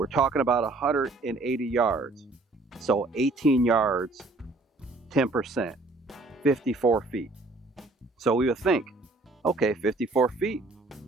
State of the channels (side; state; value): left; quieter; 3.2 dB